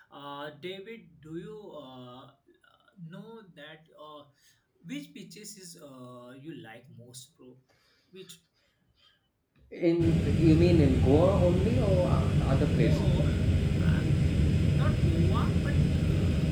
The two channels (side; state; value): both; identical; correlation 1.00